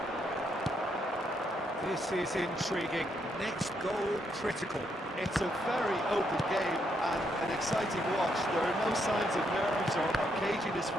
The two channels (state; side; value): normal; both; correlation 0.76